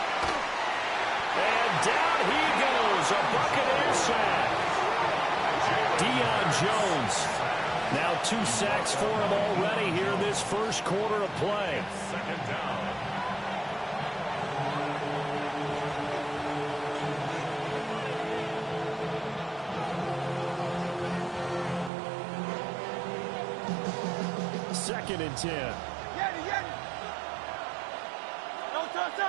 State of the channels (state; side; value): drops out; left; at 21.9 s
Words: And down he goes. A Buccaneer sack. Deion Jones. Now 2 sacks for him already here in this first quarter of play. Second down. Second and 10.